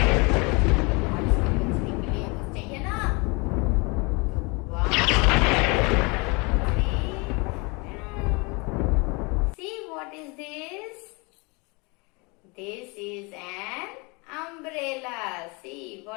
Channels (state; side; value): quieter; right; 29.0 dB